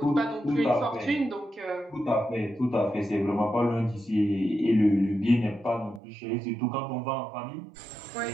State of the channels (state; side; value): drops out; left; at 6.0 s